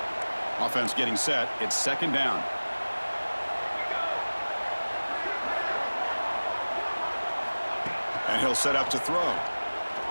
Offense getting set. It's second down. And he'll set up to throw.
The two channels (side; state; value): both; inverted; correlation -1.00